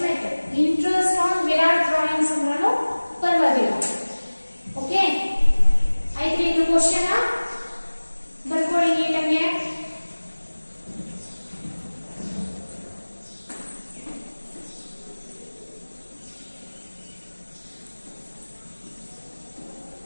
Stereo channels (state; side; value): inverted; both; correlation -1.00